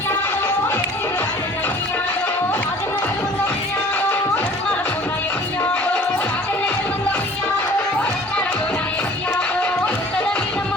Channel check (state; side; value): normal; both; correlation 0.49